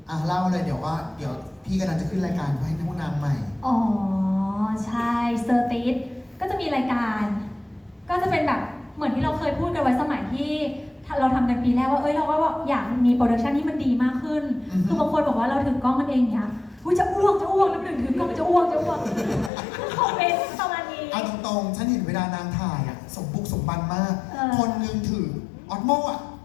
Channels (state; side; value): drops out; right; at 19.5 s